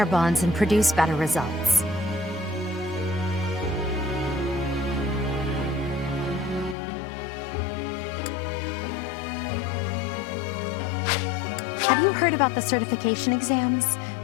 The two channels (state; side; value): drops out; right; at 6.8 s